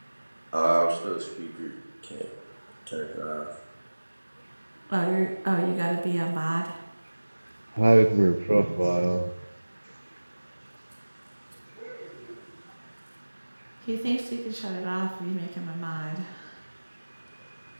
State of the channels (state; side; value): inverted; both; correlation -1.00